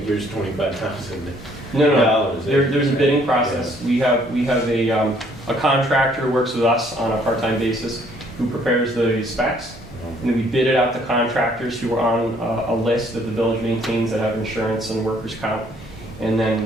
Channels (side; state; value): both; normal; correlation 0.63